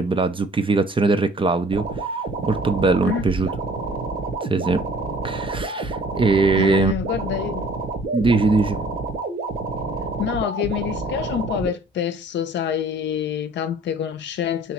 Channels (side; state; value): both; normal; correlation 0.52